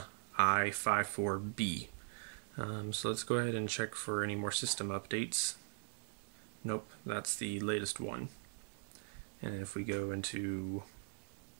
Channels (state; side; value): silent; left; digital silence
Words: So let's go ahead and check for any more system updates. Nope, that's the latest one. And if we go into